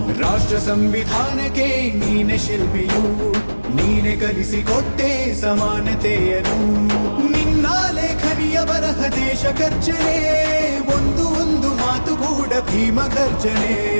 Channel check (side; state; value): both; inverted; correlation -1.00